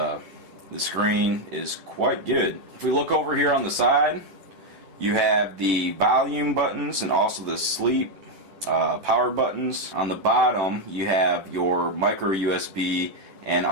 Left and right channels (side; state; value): left; late; 10 ms